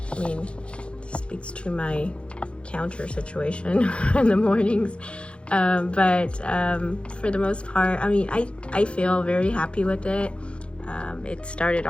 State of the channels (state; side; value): late; right; 0.058 ms